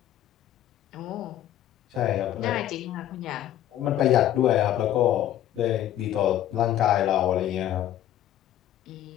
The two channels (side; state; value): right; quieter; 12.1 dB